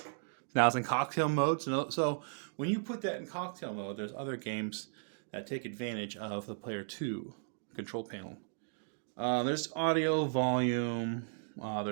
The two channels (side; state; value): left; silent; digital silence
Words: Now it's in cocktail mode. So when you put that in cocktail mode, there's other games that take advantage of the player 2 control panel. There's audio volume,